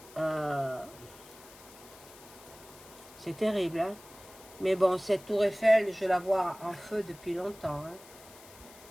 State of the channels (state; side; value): noise; left; hiss, 20 dB below the sound